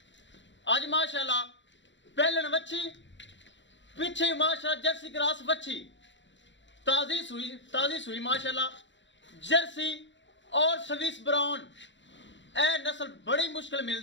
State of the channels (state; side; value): late; right; 0.53 ms